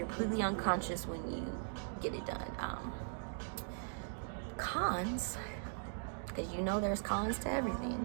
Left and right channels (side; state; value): left; silent; digital silence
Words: completely unconscious when you get it done. Cons, because you know there's cons to everything.